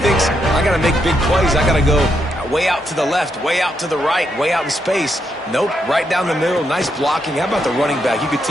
thinks, I got to make big plays. I got to go way out to the left, way out to the right, way out in space. Nope, right down the middle. Nice blocking. How about the running back? You could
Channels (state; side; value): normal; both; correlation 0.80